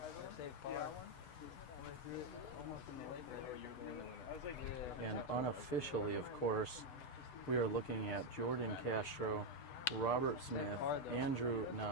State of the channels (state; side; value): late; right; 6.7 ms